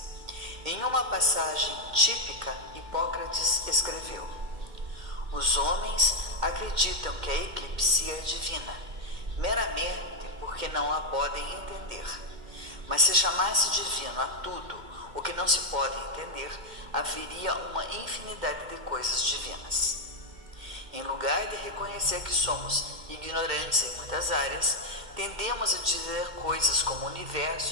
Em uma passagem típica, Hipócrates escreveu: os homens acreditam que a eclipsia é divina, meramente porque não a podem entender. Mas se chamasse divino a tudo o que não se pode entender, haveria uma infinidade de coisas divinas. Em lugar de reconhecer que somos ignorantes em muitas áreas, tendemos a dizer coisas como o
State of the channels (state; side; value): late; left; 2.1 ms